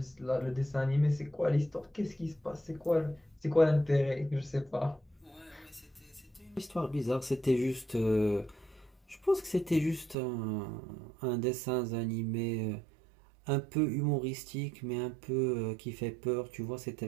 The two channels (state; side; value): drops out; left; at 10.2 s